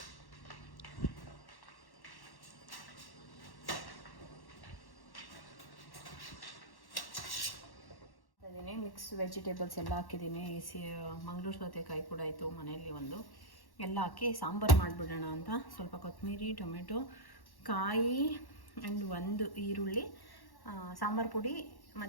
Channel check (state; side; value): late; right; 1.1 ms